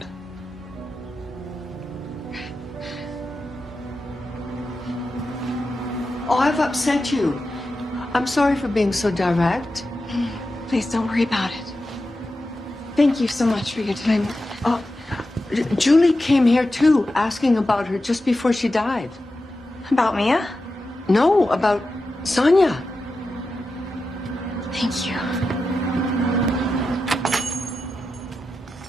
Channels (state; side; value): normal; both; correlation 0.91